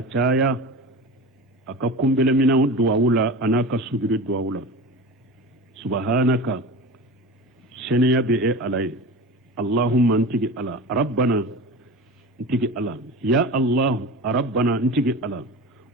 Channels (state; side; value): normal; both; correlation 0.31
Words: aka kumbele mina duwawula anaka sujudu duwawula subhanaka seniya be e alay allahumma antigi ala rabbana antigi ala ya allah rabbana antigi ala